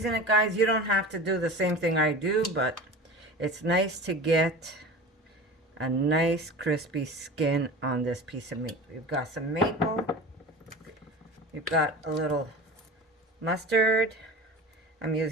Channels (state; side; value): normal; both; correlation 0.34